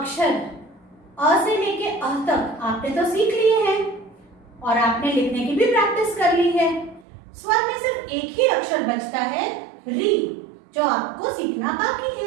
अ से लेके अह तक आपने तो सीख लिए हैं और आपने लिखने की भी प्रैक्टिस कर ली है। स्वर में सिर्फ एक ही अक्षर बचता है री, जो आपको सीखना बाकी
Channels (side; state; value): left; drops out; at 7.1 s